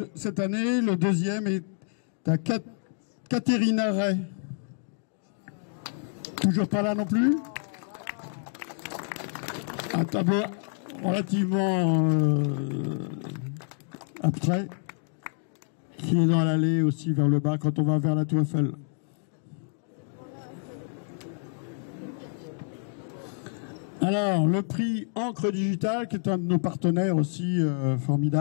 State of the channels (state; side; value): silent; right; 59 dB below the other